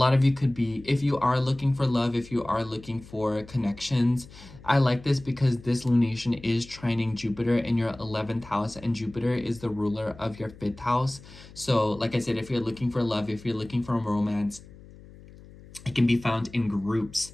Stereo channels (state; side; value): noise; left; hum, 20 dB below the sound